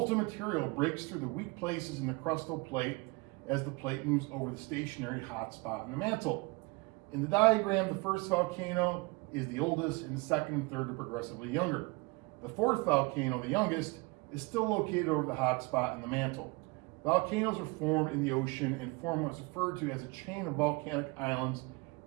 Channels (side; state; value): left; quieter; 26.5 dB